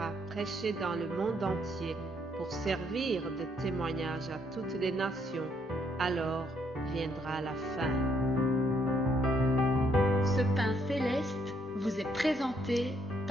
prêchée dans le monde entier pour servir de témoignage à toutes les nations. Alors viendra la fin. Ce pain céleste vous est présenté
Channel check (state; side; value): normal; both; correlation 0.71